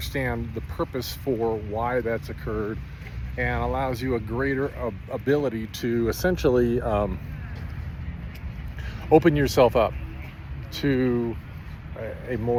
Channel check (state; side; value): identical; both; correlation 1.00